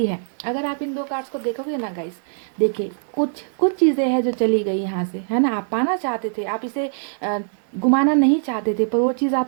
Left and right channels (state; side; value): silent; left; digital silence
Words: है। अगर आप इन दो कार्ड्स को देखोगे ना गाइस, देखिए कुछ कुछ चीज़ें हैं जो चली गई यहाँ से, है ना? आप पाना चाहते थे, आप इसे गुमाना नहीं चाहते थे, पर वो चीज़